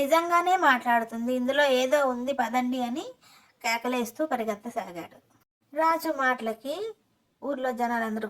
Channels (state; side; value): identical; both; correlation 1.00